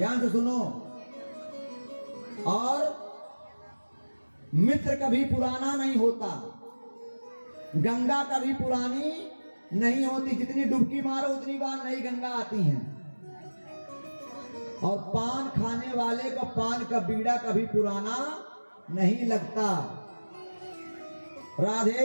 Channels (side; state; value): both; inverted; correlation -1.00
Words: से सुनो। और मित्र कभी पुराना नहीं होता, गंगा कभी पुरानी नहीं होती। जितनी डुबकी मारो उतनी बार नई गंगा आती है। और पान खाने वाले को पान का बीड़ा कभी पुराना नहीं लगता।